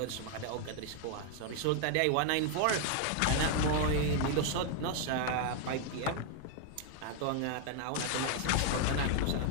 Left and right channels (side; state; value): both; different; correlation 0.00